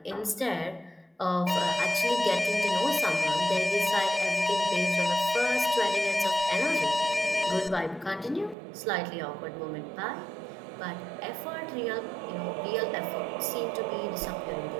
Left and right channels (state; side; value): drops out; left; at 8.6 s